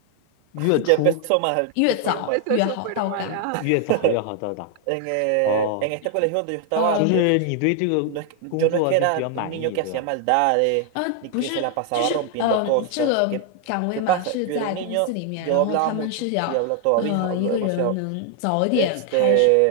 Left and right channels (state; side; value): different; both; correlation 0.00